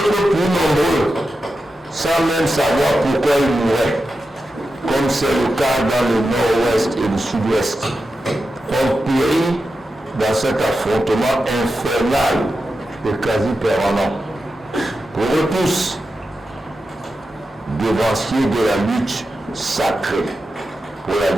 plus nombreux, sans même savoir pourquoi ils mouraient, comme c'est le cas dans le nord-ouest et le sud-ouest, ont péri dans cet affrontement infernal et quasi permanent. Pour eux tous, devanciers de la lutte sacrée pour la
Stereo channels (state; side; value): normal; both; correlation 0.90